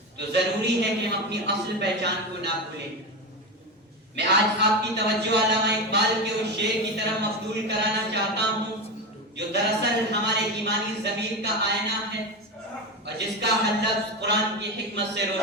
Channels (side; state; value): both; normal; correlation 0.19